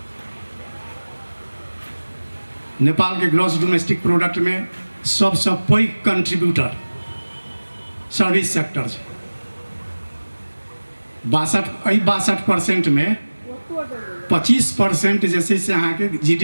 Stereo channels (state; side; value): inverted; both; correlation -1.00